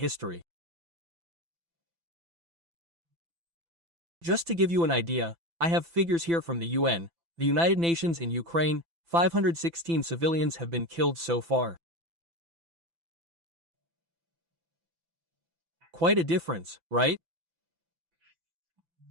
Just to give you an idea, I have figures here from the UN, the United Nations in Ukraine, 516 civilians have been killed so far. Quite a difference, right?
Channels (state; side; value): late; left; 5.9 ms